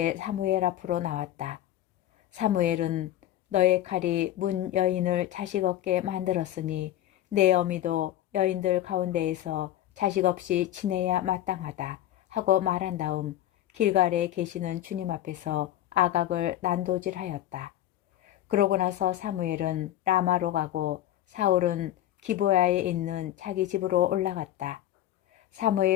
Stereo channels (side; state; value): right; quieter; 12.8 dB